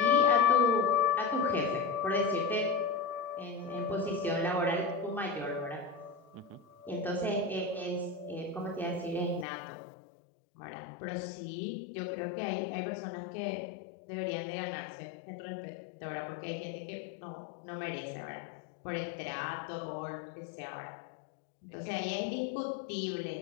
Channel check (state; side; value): drops out; right; at 9.5 s